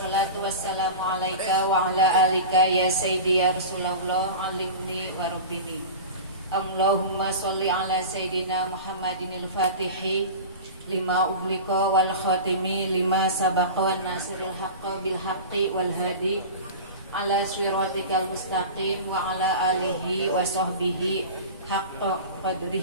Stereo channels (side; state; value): both; inverted; correlation -0.31